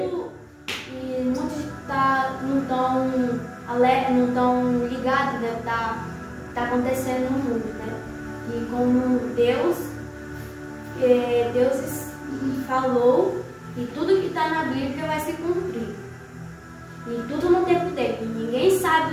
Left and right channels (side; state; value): both; identical; correlation 1.00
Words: E muitos não estão ligados, né? Tá acontecendo no mundo, né? E como Deus falou, e tudo que está na Bíblia vai se cumprir. E tudo no tempo dele. E ninguém sabe